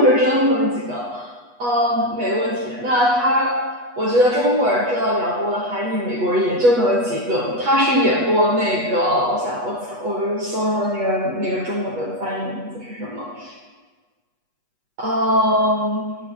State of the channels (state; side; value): late; left; 8.2 ms